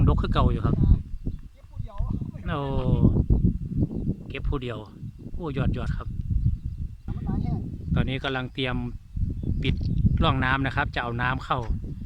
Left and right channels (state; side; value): identical; both; correlation 1.00